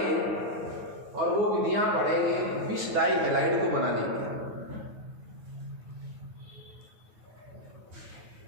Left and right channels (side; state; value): left; late; 9.5 ms